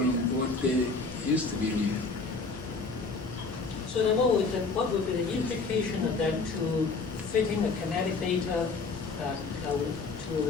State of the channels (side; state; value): right; quieter; 4.1 dB